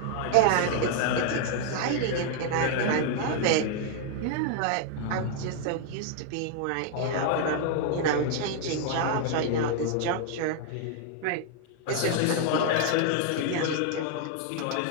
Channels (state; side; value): different; both; correlation 0.00